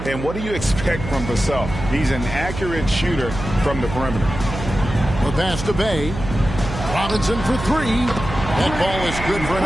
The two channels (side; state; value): right; noise; hum, 8 dB below the sound